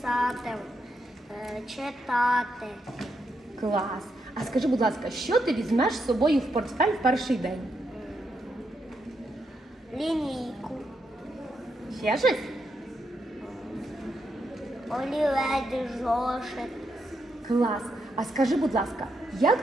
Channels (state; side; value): normal; both; correlation 0.81